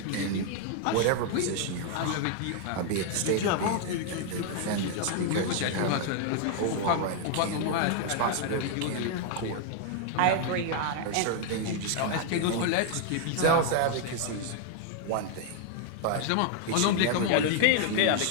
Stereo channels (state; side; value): different; both; correlation 0.00